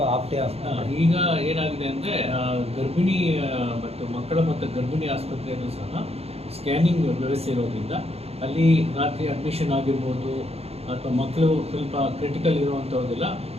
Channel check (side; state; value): left; late; 0.29 ms